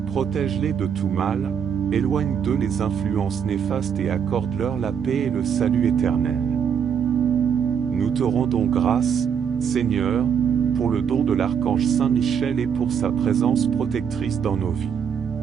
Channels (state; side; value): quieter; left; 7.5 dB